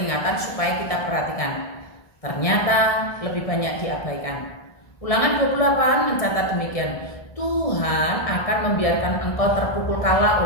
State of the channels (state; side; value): late; right; 1.7 ms